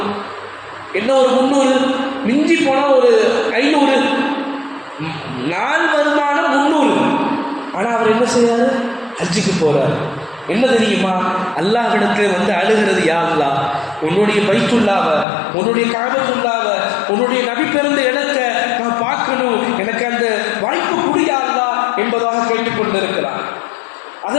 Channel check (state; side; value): drops out; right; at 15.2 s